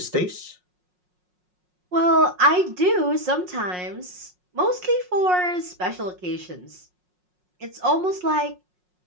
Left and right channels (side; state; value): left; late; 5.5 ms